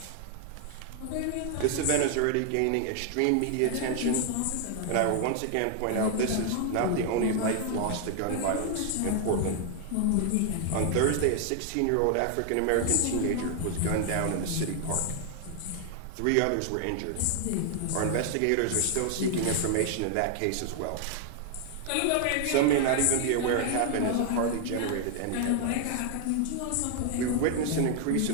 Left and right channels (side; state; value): both; different; correlation 0.00